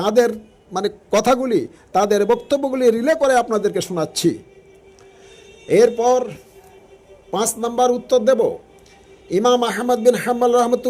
কথাগুলি, তাদের বক্তব্যগুলি রিলে করে আপনাদেরকে শোনাচ্ছি। এরপর 5 নম্বর উত্তর দেব, ইমাম আহমদ বিন হাম্বল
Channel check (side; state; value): both; identical; correlation 1.00